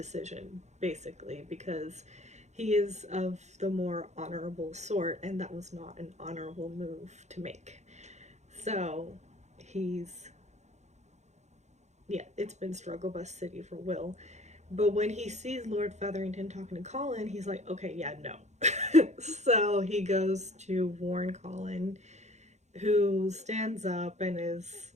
basically, because he is of the more honorable sort, and that was not an honorable move to make. So it's been struggle bus city for Will. But when he sees Lord Featherington talking to Colin, he's like, okay, yeah, no. So he goes to warn Colin, who stands up and is,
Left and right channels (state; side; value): late; left; 0.33 ms